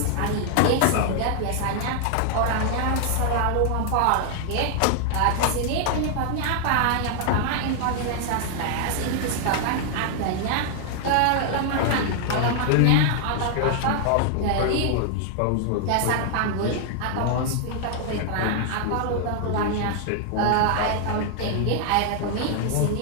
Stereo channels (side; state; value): both; different; correlation 0.00